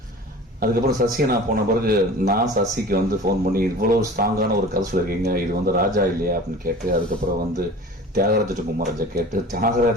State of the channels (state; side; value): normal; both; correlation 0.40